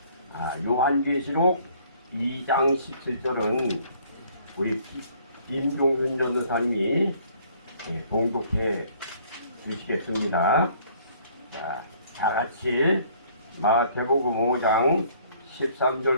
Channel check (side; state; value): both; inverted; correlation -0.59